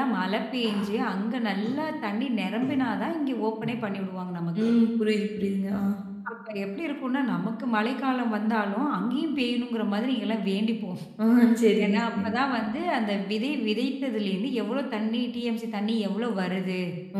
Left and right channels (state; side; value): identical; both; correlation 1.00